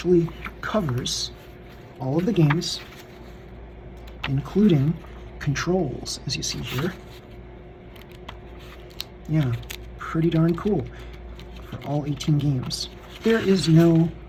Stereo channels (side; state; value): both; identical; correlation 1.00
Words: covers all of the games, including controls, as you see here. Yeah, pretty darn cool for all 18 games. There is no